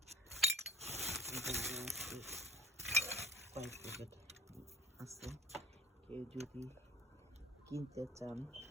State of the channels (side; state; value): both; normal; correlation 0.50